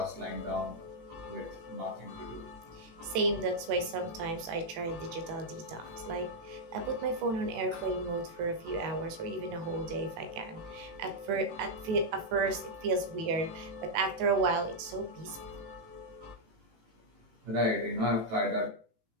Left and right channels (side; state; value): left; late; 18 ms